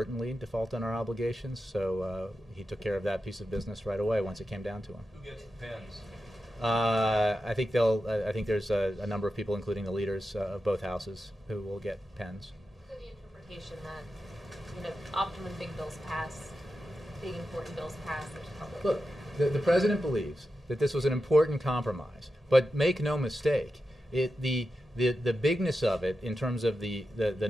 default on our obligations. So he took care of that piece of business right away once it came down to him. Who gets the pens? I think there's a number of people, including the leaders of both houses, who will get pens. So the interpretation that, often when big bills pass, big important bills pass, there's public. Look, the president believes that this was an important compromise, but make no mistake, the bigness of it, in terms of the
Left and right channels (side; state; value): both; normal; correlation 0.90